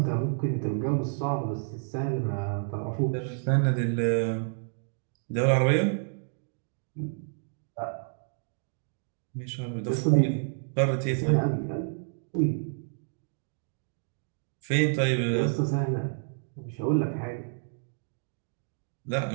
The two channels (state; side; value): silent; left; digital silence